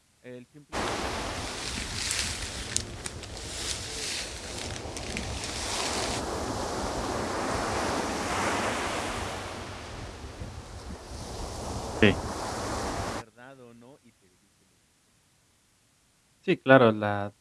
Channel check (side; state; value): both; identical; correlation 1.00